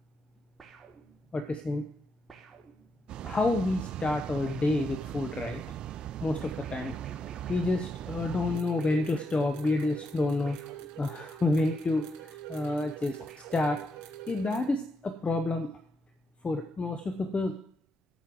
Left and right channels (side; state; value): both; normal; correlation 0.81